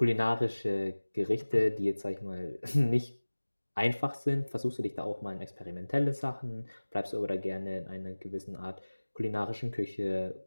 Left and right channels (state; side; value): inverted; both; correlation -1.00